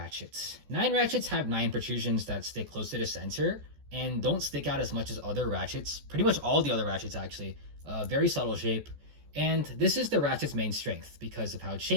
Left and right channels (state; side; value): late; left; 14 ms